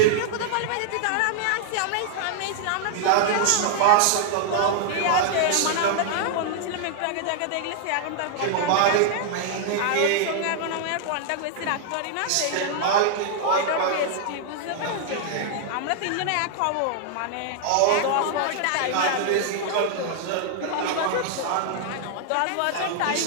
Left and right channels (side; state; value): both; different; correlation 0.00